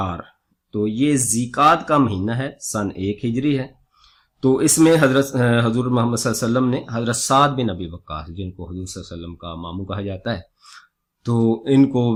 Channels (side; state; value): both; identical; correlation 1.00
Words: تو یہ ذیقعد کا مہینہ ہے، سن 1 ہجری ہے۔ تو اس میں حضور محمد صلی اللہ علیہ وسلم نے حضرت سعد بن ابی وقاص، جن کو حضور صلی اللہ علیہ وسلم کا ماموں کہا جاتا ہے، تو ان کو